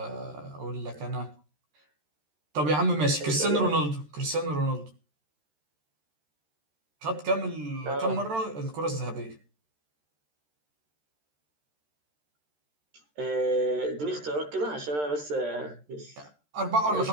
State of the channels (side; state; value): left; late; 13 ms